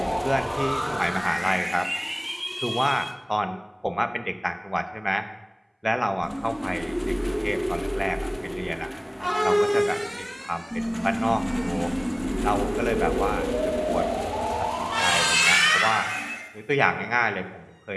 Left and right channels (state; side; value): identical; both; correlation 1.00